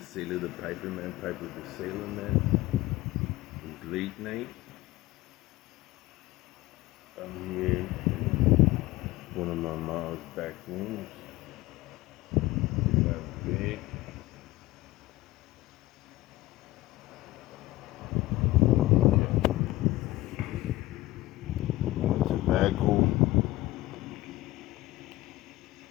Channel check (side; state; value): right; quieter; 17.8 dB